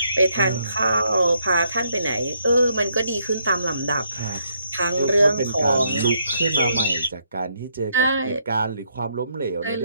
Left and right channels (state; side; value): inverted; both; correlation -0.74